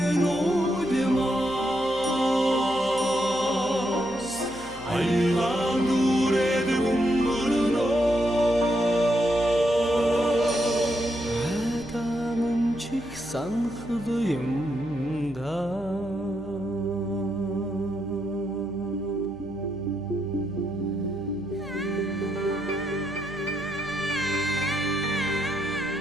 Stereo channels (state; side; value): noise; left; hum, 19 dB below the sound